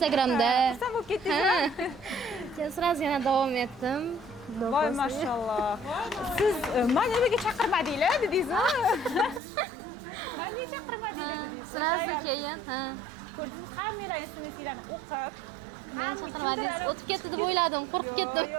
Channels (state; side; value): drops out; left; at 9.4 s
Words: xursand bo'lib ketdingizmi? Keyin sразу yana davom etdim. Voy mashalloh. Siz meni uyiga chaqirmadinglar dedingizmi? Meni chaqirmadinglar dedingiz. O'sha ayol. Keyin, ha. Ko'rdingizmi, hammalar instrumentlarni o'qib, hamma kimdir ana o'tib ketdi deb o'yladim, qo'rqib ketdim.